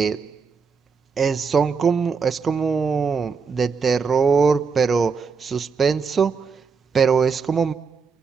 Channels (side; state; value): left; quieter; 5.4 dB